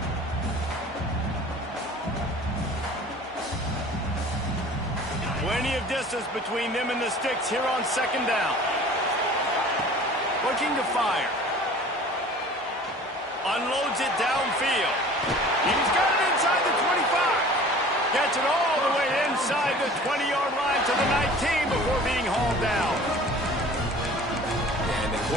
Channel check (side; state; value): both; normal; correlation 0.45